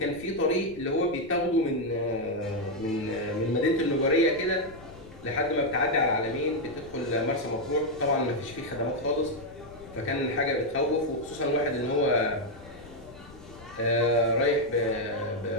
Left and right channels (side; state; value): left; noise; rumble, 20 dB below the sound